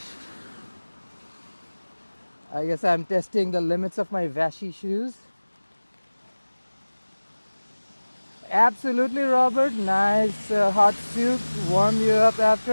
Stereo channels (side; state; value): both; inverted; correlation -1.00